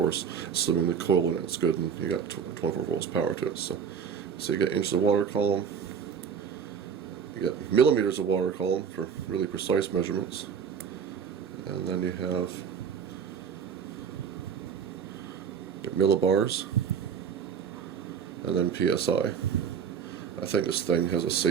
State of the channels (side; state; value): left; quieter; 7.1 dB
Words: assuming the coil in it's good and you got 24 volts power to it. So you get inches of water column, you get millimeters of water column for really precise measurements, and then you have your millibars, and then PSI. I think this thing has a